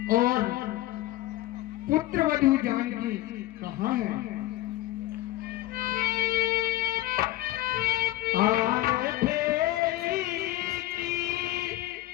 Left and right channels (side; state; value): right; quieter; 16.0 dB